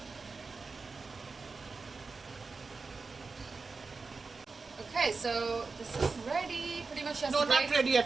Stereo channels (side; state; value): left; quieter; 4.3 dB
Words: Okay, so this is ready. Pretty much just No, not ready